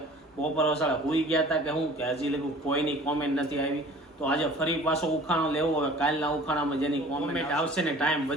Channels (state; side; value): normal; both; correlation 0.47